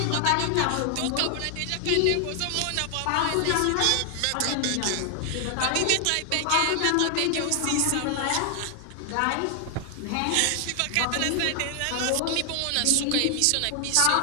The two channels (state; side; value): different; both; correlation 0.00